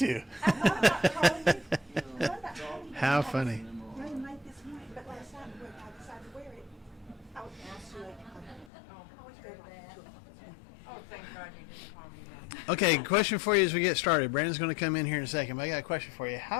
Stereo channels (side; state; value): right; drops out; at 8.7 s